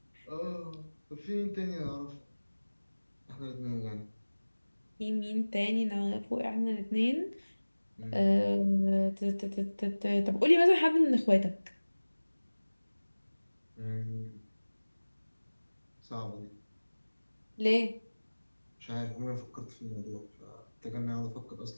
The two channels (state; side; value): inverted; both; correlation -1.00